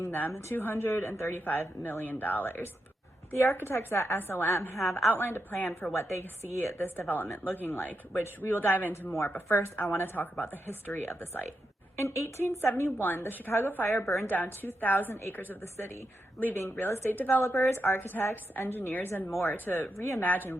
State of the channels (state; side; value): normal; both; correlation 0.85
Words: them $235 million. The architects at SOM have outlined a plan for what they see this development looking like, which we will dive into more, but first I want to talk about the history of the site. In 1871, the Chicago fire burned down 2,000 acres of the city, leaving real estate developers, architects, engineers, and more to reimagine